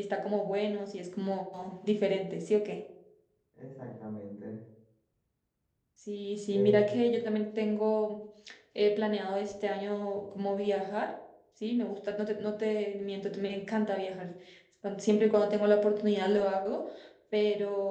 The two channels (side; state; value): both; identical; correlation 1.00